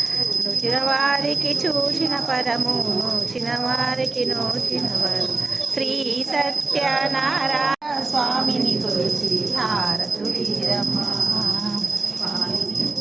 నూచిన వారికి చూచిన పరము, నూచిన వారికి నూచిన వరం, శ్రీ సత్యనారాయణ స్వామిని కొలిచి హారతులీరమ్మ.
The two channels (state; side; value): quieter; left; 3.6 dB